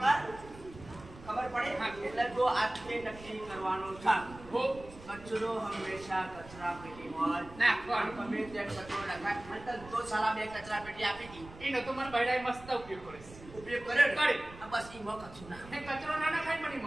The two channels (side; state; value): right; noise; rumble, 17 dB below the sound